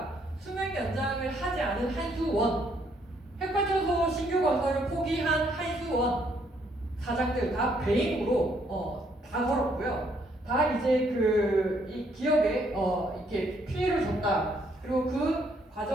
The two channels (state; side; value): normal; both; correlation 0.70